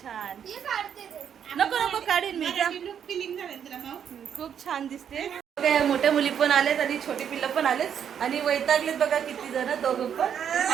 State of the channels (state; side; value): quieter; left; 8.5 dB